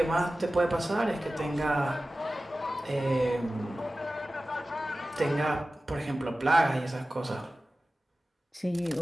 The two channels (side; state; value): both; normal; correlation 0.96